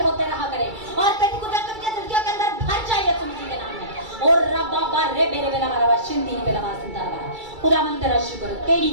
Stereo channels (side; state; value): left; late; 2.3 ms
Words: होते रहा करे और तेरी कुदरत के दिलकियों के अंदर भर जाए यीशु मसीह के नाम में। और रब्बा बारे बेरे बेला मारा शिंदी बेला मारा सिंदा मारा खुदावन तेरा शुक्र हो, तेरी